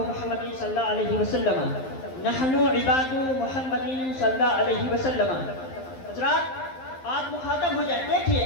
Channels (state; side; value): late; right; 11 ms